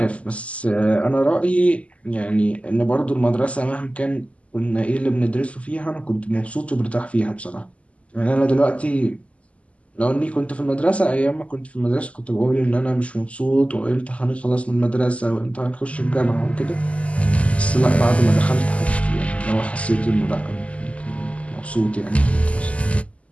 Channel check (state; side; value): late; right; 0.064 ms